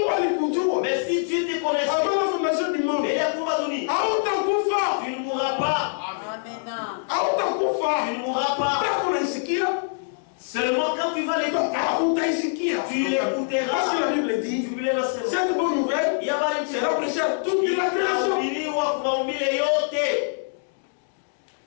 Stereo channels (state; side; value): silent; right; 62 dB below the other